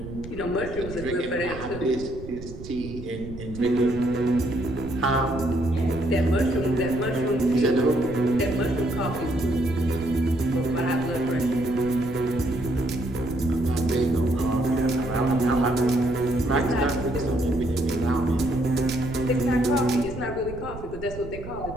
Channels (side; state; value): right; noise; rumble, 12 dB below the sound